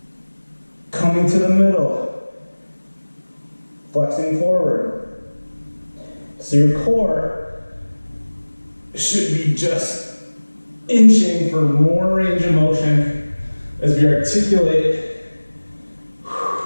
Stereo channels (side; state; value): both; inverted; correlation -1.00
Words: Coming to the middle. Flexing forward. So your core should be just inching for more range of motion as we articulate